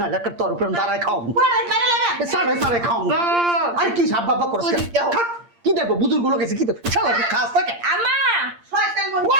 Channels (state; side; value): late; left; 8.6 ms